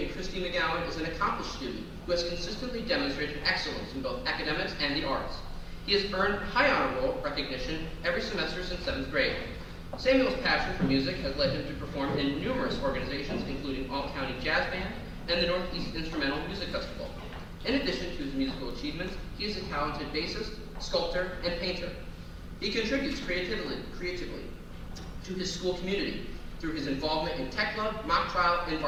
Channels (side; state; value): both; identical; correlation 1.00